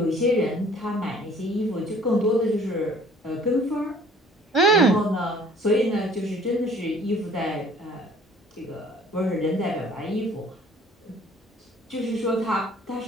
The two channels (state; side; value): normal; both; correlation 0.54